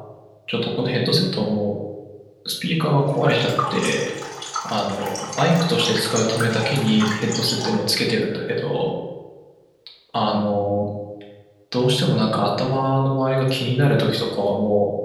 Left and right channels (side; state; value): both; identical; correlation 1.00